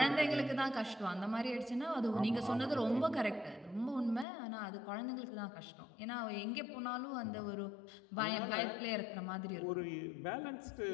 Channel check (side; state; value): right; drops out; at 4.2 s